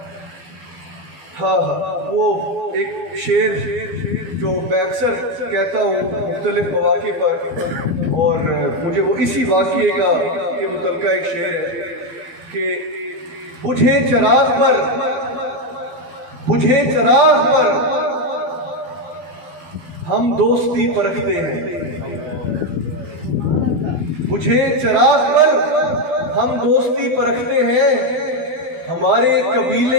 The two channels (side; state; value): left; late; 12 ms